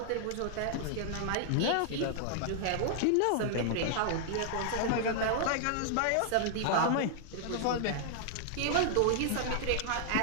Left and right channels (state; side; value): different; both; correlation -0.01